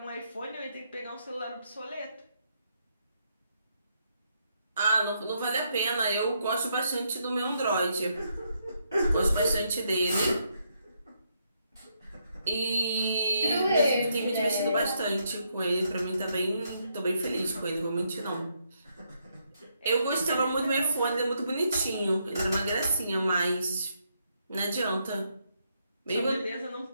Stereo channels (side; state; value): both; inverted; correlation -0.77